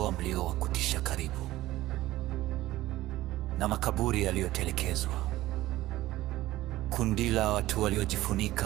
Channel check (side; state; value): left; quieter; 16.3 dB